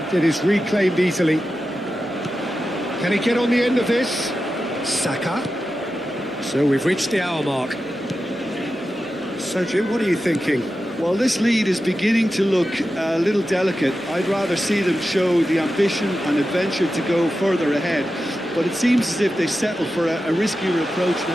it is reclaimed easily. Can he get on the end of this? Saka. So we've reached the hour mark. So Jim, what are you thinking? Well, this lead is beginning to look a little delicate. I'd rather see them show the ambition and adventure to go further ahead. But it seems as if they settle for a riskier approach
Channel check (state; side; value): normal; both; correlation 0.92